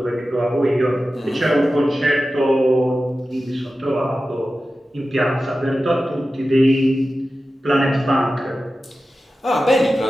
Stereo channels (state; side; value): normal; both; correlation 0.94